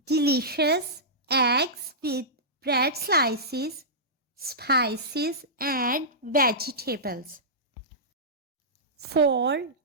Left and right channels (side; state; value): both; normal; correlation -0.16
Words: delicious eggs with bread slices, spices and vegetables. For